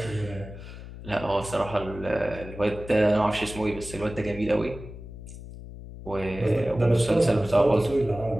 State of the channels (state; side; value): noise; left; hum, 13 dB below the sound